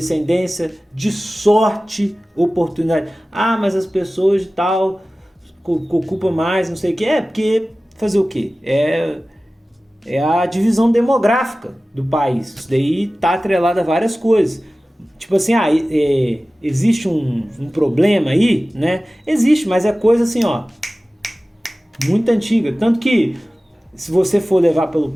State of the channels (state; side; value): normal; both; correlation 0.97